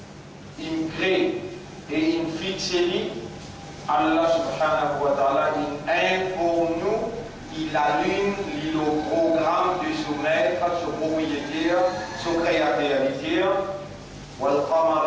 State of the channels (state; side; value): identical; both; correlation 1.00